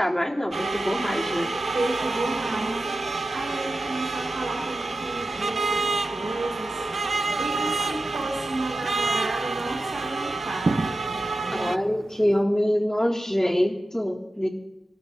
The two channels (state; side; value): normal; both; correlation 0.92